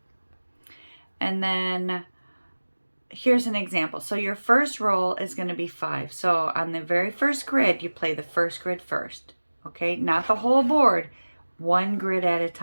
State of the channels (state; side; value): inverted; both; correlation -1.00